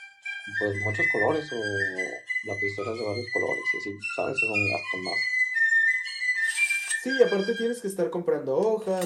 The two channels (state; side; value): identical; both; correlation 1.00